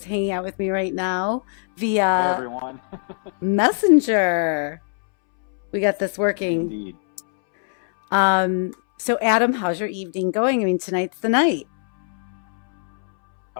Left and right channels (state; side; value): silent; right; 65 dB below the other